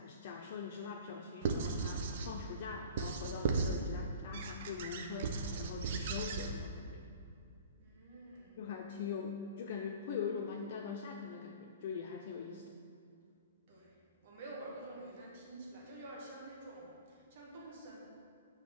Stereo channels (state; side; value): inverted; both; correlation -0.42